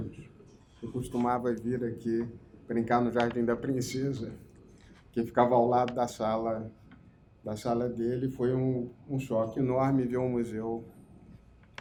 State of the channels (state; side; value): identical; both; correlation 1.00